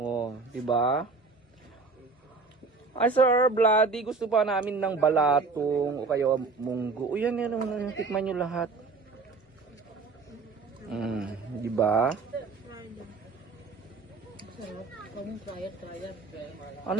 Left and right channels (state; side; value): quieter; left; 4.2 dB